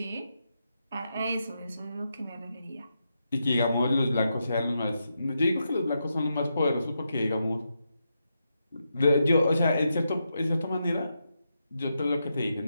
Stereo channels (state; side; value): inverted; both; correlation -0.85